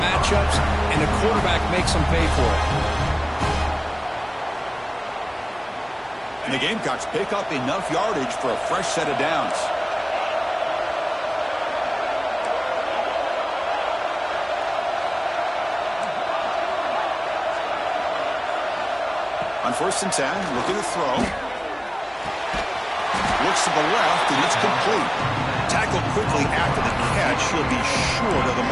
matchups, and the quarterback makes them pay for it. And the Gamecocks pick up enough yardage for a fresh set of downs. On 1st and 10, looking to throw. Looks to the left, and it's complete. Tackled quickly after the catch. He'll be short of the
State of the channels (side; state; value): both; identical; correlation 1.00